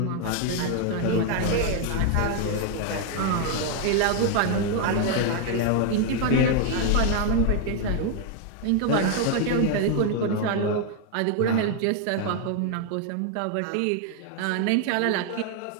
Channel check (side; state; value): both; different; correlation 0.00